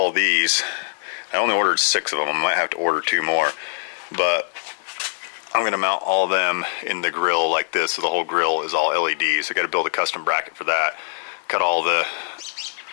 these. I only ordered 6 of them. I might have to order 2 more. But I'm going to mount all of them in the grill like this, so the whole grill is all LEDs. I got to build a custom bracket for that. Cut all the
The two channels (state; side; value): silent; right; digital silence